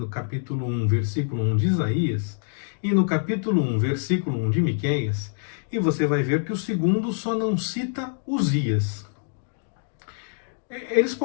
capítulo 1, versículo 1 de Isaías e no capítulo 1, versículo 1 de Miqueias, e você vai ver que o segundo só não cita Uzias. Eles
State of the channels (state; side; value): silent; right; digital silence